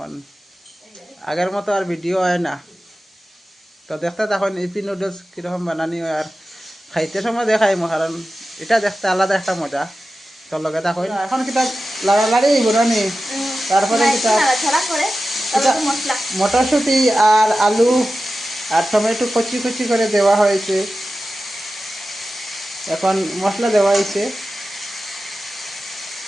আগের মতো আর ভিডিও হয় না তো দেখতে তখন ইপি নুডলস কিরকম বানানি হয় আর খাইতে সময় দেখাইমু কারণ এটা দেখতে আলাদা একটা মজা তোর লগে থাকইন এখন কিতা লাড়ালাড়ি বনানি তারপরে কিতা মটরশুঁটি আর আলু আর টমেটো কচি কচি করে দেওয়া হয়েছে এখন মশলা দেওয়া হয়েছে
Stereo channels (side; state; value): both; normal; correlation 0.94